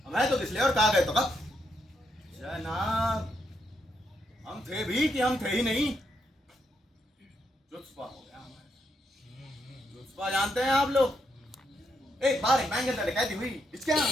मैं तो किस लिए और कहा गए तो कब जनाब, हम थे भी कि हम थे ही नहीं। जुत्सपा हो गया हमारे। जुत्सपा जानते हैं आप लोग? एक बार एक बैंक के अंदर डकैती हुई।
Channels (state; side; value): normal; both; correlation 0.79